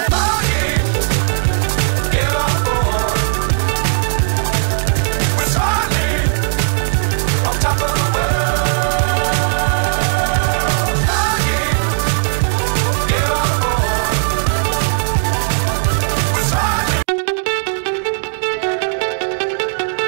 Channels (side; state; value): left; silent; 60 dB below the other